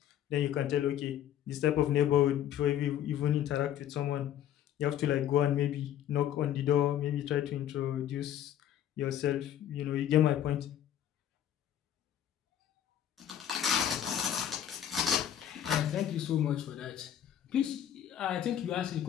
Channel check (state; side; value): quieter; right; 10.7 dB